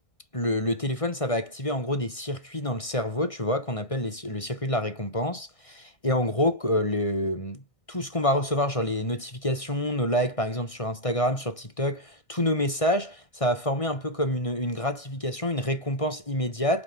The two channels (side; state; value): right; late; 1.6 ms